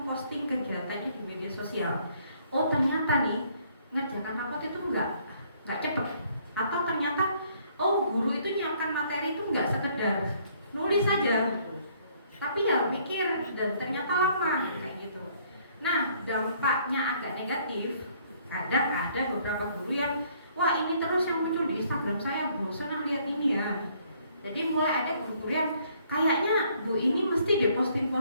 kegiatannya di media sosial. Oh ternyata nih ngerjakan rapot itu nggak cepet. Atau ternyata oh guru itu nyiapkan materi itu nggak sekedar nulis saja, tapi ya mikir dan ternyata lama kayak gitu. Nah, dampaknya agak negatif. Kadang ada beberapa guru yang wah ini terus yang muncul di Instagram saya, bosan lihat ini ya. Jadi mulai ada guru-guru yang kayaknya Bu ini mesti deh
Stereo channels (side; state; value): both; inverted; correlation -0.64